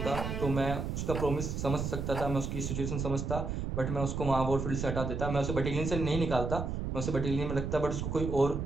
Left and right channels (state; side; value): noise; right; rumble, 3 dB below the sound